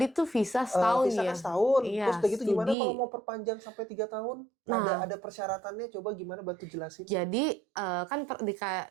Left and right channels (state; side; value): drops out; left; at 2.8 s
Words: tuh visa setahun visa ya. kan setahun. Iya, Terus udah gitu gimana studi. kalau mau perpanjang sampai 3 tahun? Nah. Ada persyaratannya, coba gimana bantu jelasin. Jadi kan